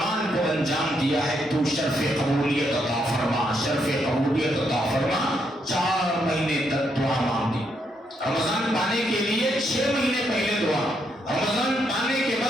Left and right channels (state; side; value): normal; both; correlation 0.77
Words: کو انجام دیا ہے تو شرف قبولیت عطا فرما، شرف قبولیت عطا فرما. 4 مہینے تک دعا مانگی. رمضان پانے کے لیے 6 مہینے پہلے دعا، رمضان پانے کے